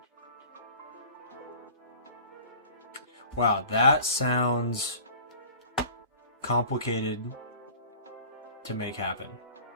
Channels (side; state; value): both; inverted; correlation -0.43